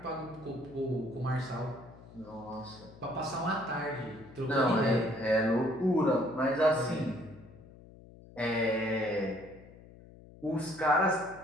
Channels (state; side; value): noise; left; hum, 20 dB below the sound